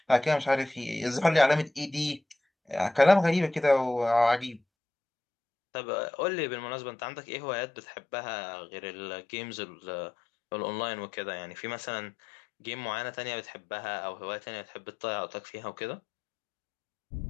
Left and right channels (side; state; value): right; drops out; at 4.6 s